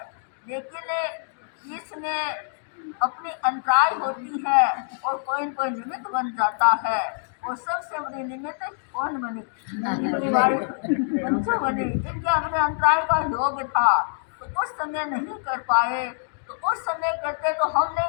लेकिन इसमें अपनी अंतराय होती है और कोई न कोई निमित्त बन जाता है। और सबसे बड़ी निमित्त कौन बनी? पंचो बनी, जिनके अपने अंतराय का योग था, तो उस समय नहीं कर पाए। तो उस समय करते तो हम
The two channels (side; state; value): right; silent; digital silence